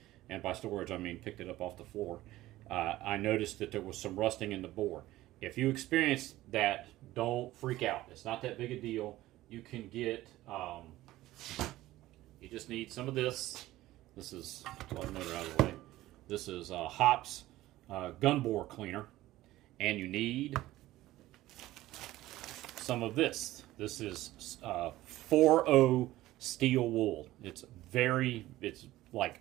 and by storage I mean picked it up off the floor, I noticed that there was some rusting in the bore. If you experience that, don't freak out. It's not that big a deal. You can get, you just need some of this. This is, let the motor out of the way. This is Hops gun bore cleaner. And you need some of this. This is 4O steel wool. It's like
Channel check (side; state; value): left; quieter; 16.3 dB